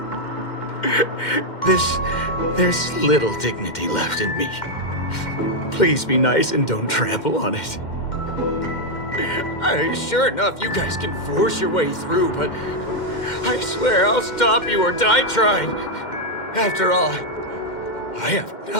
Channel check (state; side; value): late; right; 2.1 ms